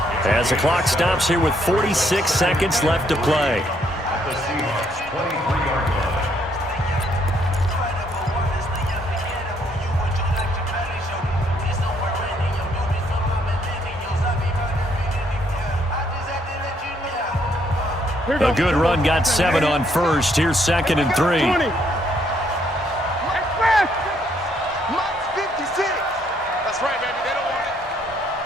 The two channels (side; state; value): both; normal; correlation 0.70